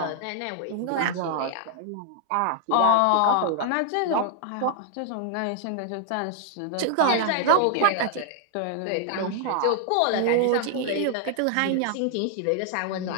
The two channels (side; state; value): both; different; correlation 0.00